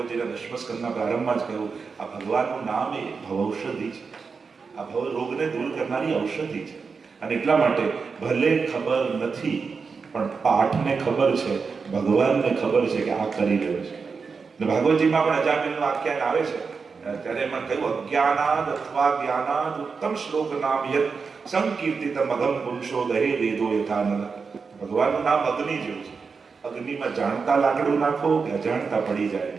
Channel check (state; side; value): quieter; left; 5.1 dB